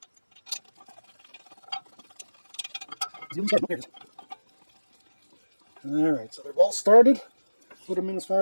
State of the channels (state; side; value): inverted; both; correlation -1.00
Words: Alright, so they're both started. Put them in as far